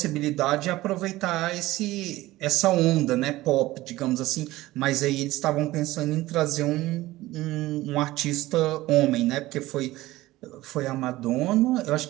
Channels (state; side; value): quieter; left; 17.5 dB